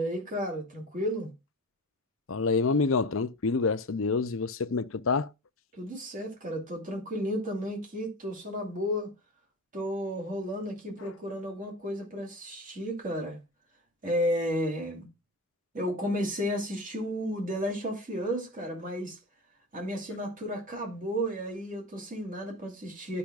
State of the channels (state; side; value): normal; both; correlation 0.27